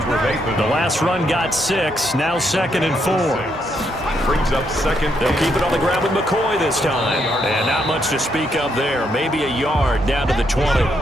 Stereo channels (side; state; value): both; normal; correlation 0.76